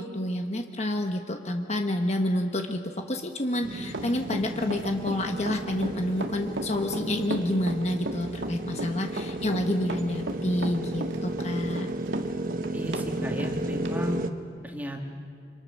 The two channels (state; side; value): normal; both; correlation 0.69